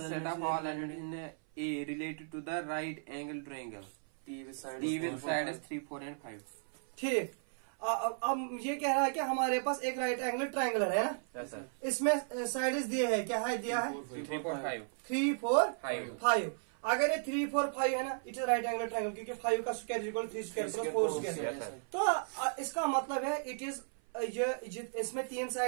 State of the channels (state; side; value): silent; left; 54 dB below the other